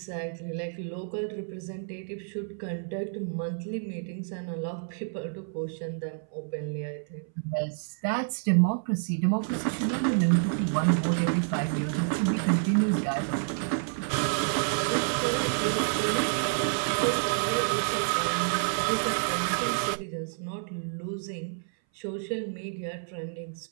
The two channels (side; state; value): left; silent; 59 dB below the other